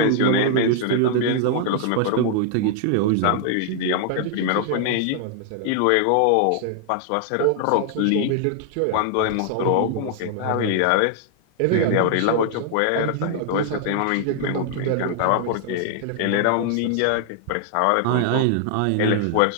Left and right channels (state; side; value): different; both; correlation 0.00